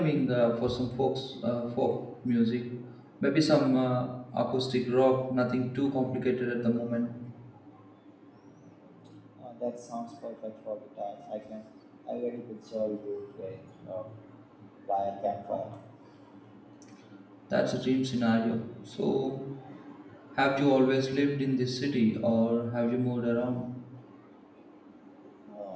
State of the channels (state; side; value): identical; both; correlation 1.00